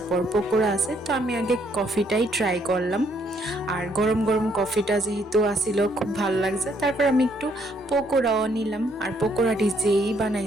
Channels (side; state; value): both; normal; correlation 0.69